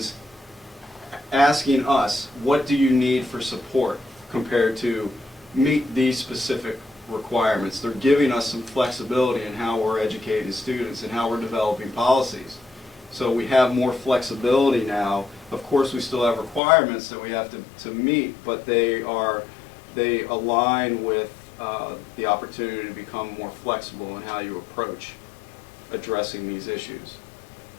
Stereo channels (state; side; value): drops out; right; at 16.6 s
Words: asking us, what do you need for support compared to meet these specific requirements. They're giving us some flexibility in how we're educating students and how we're developing policies. So we have more flexibility now. Of course, we still have requirements that we have to meet, but they align with the opportunity to become more flexible in how you approach addressing these issues.